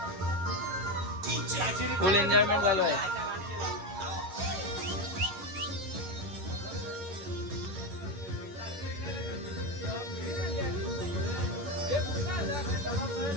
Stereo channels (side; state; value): left; late; 10 ms